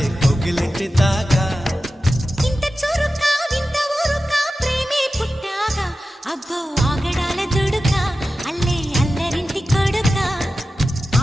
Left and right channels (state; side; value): normal; both; correlation 0.93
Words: कोगिलिंटी दागा इंत चुरुका विंत ऊरुका प्रेमे पुट्टागा अब्बो आगडाల దుడుకా అల్లే అల్లరింటి కొడుకా